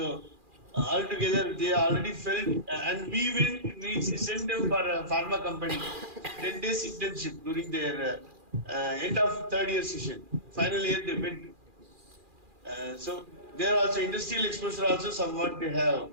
altogether they already felt, and we sent them for a pharma company 10 days internship during their end of third year session. Final year they went. So there also industrial exposure also somewhat they have.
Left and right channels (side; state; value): left; late; 2.4 ms